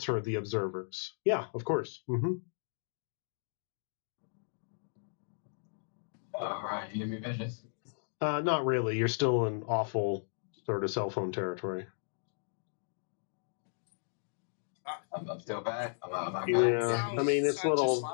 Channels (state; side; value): silent; right; digital silence